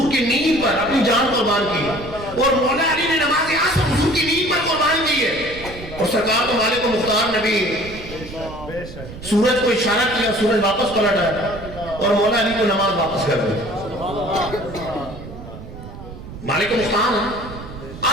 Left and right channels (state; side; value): noise; right; rumble, 13 dB below the sound